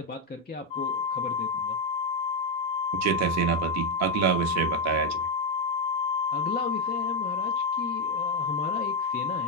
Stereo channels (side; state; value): both; normal; correlation 0.04